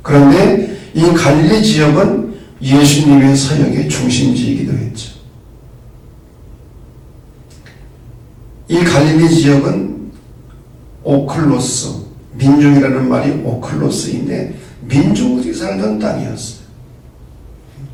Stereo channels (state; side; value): identical; both; correlation 1.00